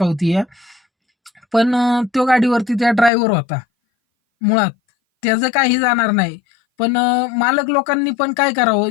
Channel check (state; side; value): drops out; right; at 3.1 s